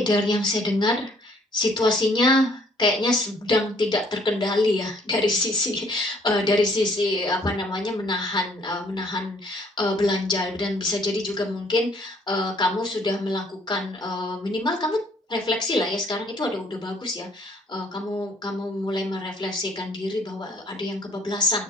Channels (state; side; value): normal; both; correlation 0.62